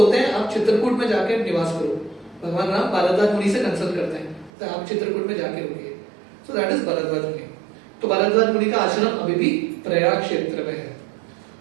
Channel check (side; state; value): left; drops out; at 4.5 s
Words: हैं आप चित्रकूट में जाके निवास करो। भगवान राम भरद्वाज मुनि से कंसल्ट करते हैं, तो आप चित्रकूट में जाके रुकिए। सो दैट इज भरद्वाज मुनि। तो भरद्वाज मुनि का आश्रम अभी भी प्रयाग क्षेत्र में है।